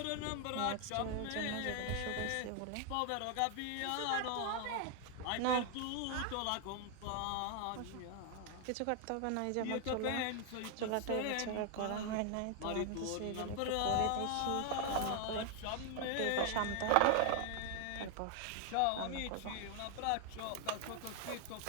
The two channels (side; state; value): both; different; correlation 0.00